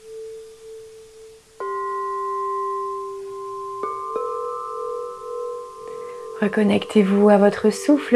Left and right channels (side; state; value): both; identical; correlation 1.00